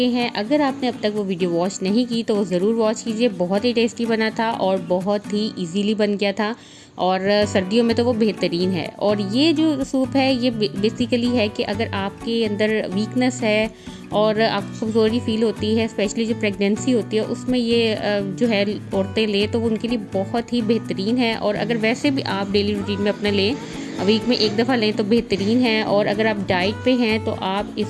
हैं, अगर आपने अब तक वो वीडियो वॉच नहीं की तो वो ज़रूर वॉच कीजिए। बहुत ही टेस्टी बना था और बहुत ही इजीली बन गया था और सर्दियों में तो वो बेहतरीन है। और ये जो सूप है ये बेसिकली है कि अगर आपके अंदर वीकनेस है और आपको कमज़ोरी फील होती है, स्पेशली जो प्रेगनेंसी होती है उसमें ये जो है औरतें लें तो वो उनके लिए बहुत ही बेहतरीन है। और अगर वैसे भी आप डेली रूटीन में अपना लें, वीक में 1 दफ़ा लें तो बेहतरीन है। और अगर आप डाइट पे हैं तो आप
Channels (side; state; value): both; identical; correlation 1.00